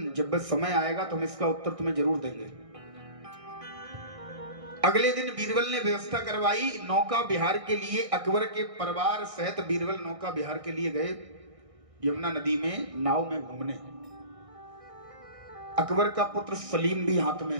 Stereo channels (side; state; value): left; late; 1.6 ms